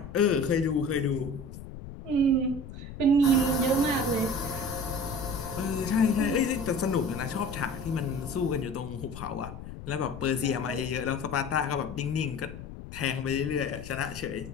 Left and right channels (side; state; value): left; noise; rumble, 12 dB below the sound